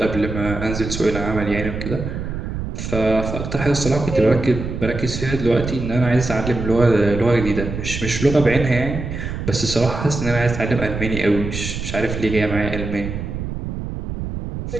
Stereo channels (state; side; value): noise; right; rumble, 6 dB below the sound